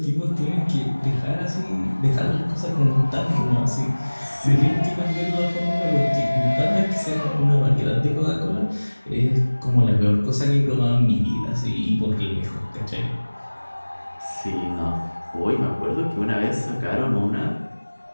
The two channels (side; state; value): both; inverted; correlation -1.00